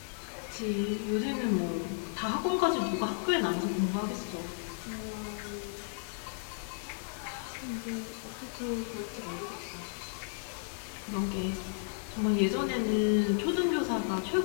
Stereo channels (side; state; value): right; silent; digital silence